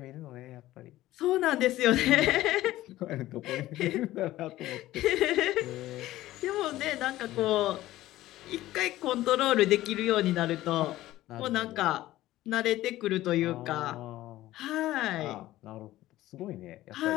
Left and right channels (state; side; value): quieter; right; 15.6 dB